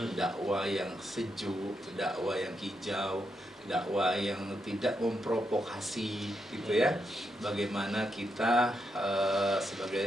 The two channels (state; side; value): normal; both; correlation 0.83